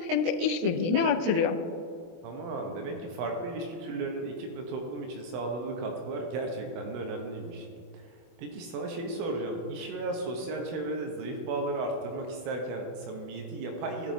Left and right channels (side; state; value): left; late; 24 ms